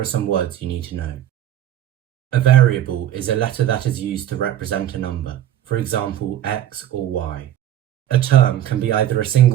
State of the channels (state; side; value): quieter; left; 11.7 dB